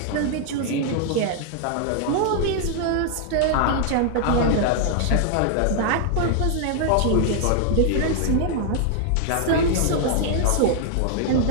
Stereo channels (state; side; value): different; both; correlation 0.00